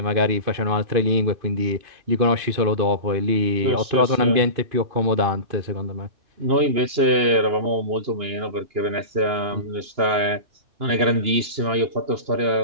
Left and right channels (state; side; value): late; left; 2.9 ms